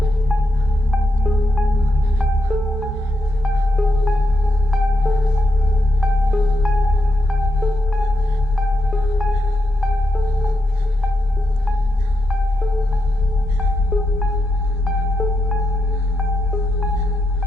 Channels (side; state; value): both; normal; correlation 0.84